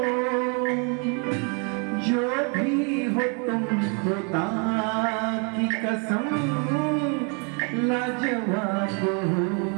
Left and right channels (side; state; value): left; quieter; 36.6 dB